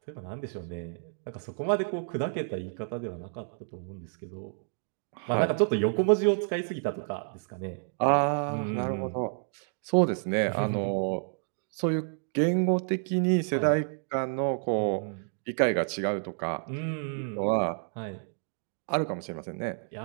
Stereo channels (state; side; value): silent; left; 58 dB below the other